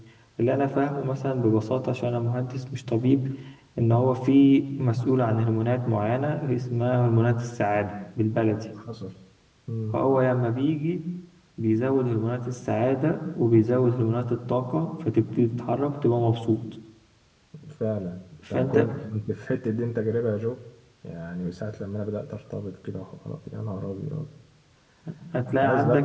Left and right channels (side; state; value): both; identical; correlation 1.00